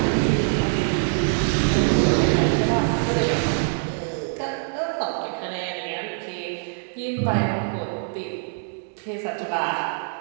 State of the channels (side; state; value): left; silent; digital silence